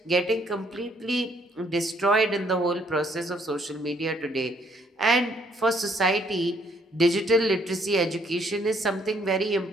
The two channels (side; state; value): both; normal; correlation 0.67